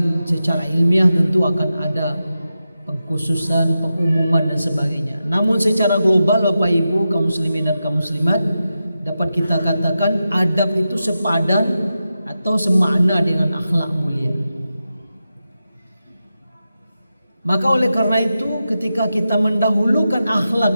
secara ilmiah tentu akan ada pengkhususan, pengumuman dan sebagainya. Namun secara global Bapak Ibu kaum muslimin dan kaum muslimat, dapat kita katakan adab itu sepadan atau semakna dengan akhlak mulia. Maka oleh karena itu ketika kita mendahulukan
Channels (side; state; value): both; inverted; correlation -0.91